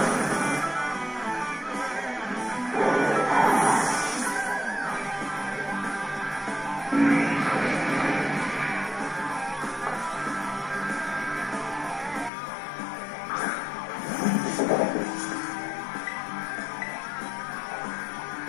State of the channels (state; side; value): drops out; right; at 12.3 s